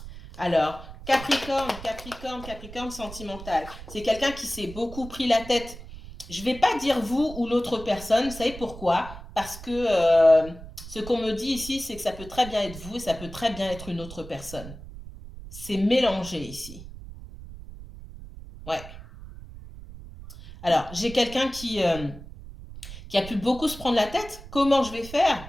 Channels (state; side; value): noise; right; rumble, 14 dB below the sound